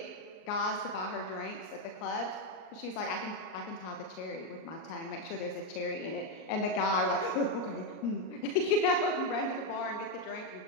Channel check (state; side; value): late; right; 38 ms